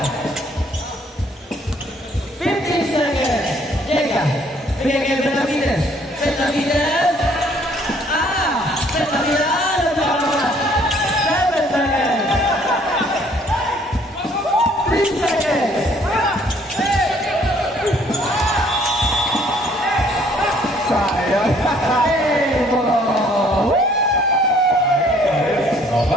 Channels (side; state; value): both; normal; correlation 0.61